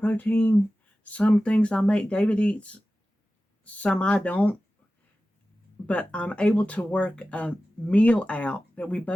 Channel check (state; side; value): normal; both; correlation 0.95